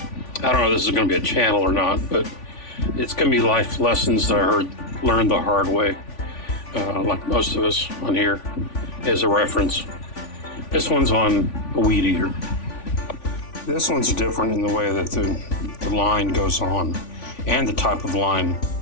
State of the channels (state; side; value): late; right; 3.5 ms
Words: don't know if this is going to be a channel or not, but it's going to be life lessons that I learned the hard way, like most of us on here, as a reference. This one's on a Weedeater. This one's different in the way that the line goes on and the type of line